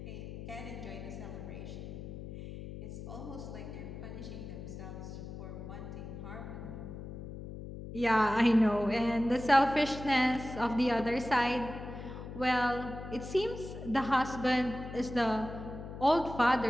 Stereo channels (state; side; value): noise; left; hum, 10 dB below the sound